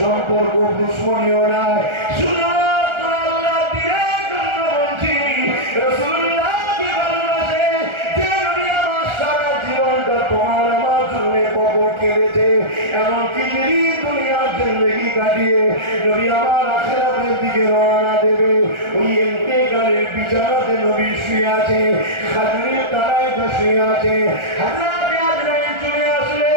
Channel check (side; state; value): left; late; 1.4 ms